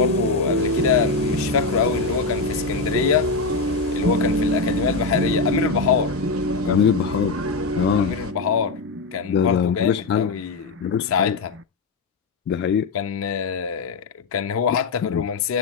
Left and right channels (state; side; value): quieter; right; 4.0 dB